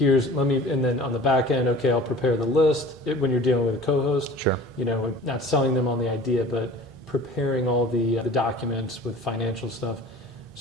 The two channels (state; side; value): normal; both; correlation 0.43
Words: then on the back end, okay, I'll prepare the list when you're dealing with a co-host. Sure. Not selling them on the idea, but preparing all the documents with financial stuff.